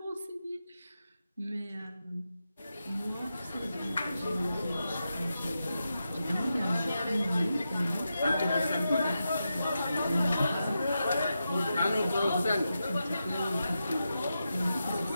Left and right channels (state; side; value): inverted; both; correlation -0.89